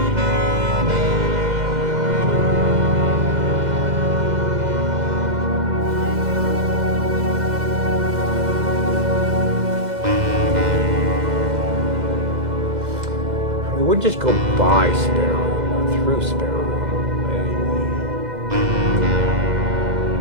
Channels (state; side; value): late; left; 2.0 ms